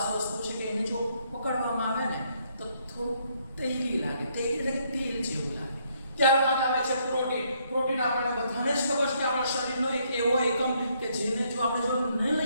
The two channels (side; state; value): both; inverted; correlation -0.71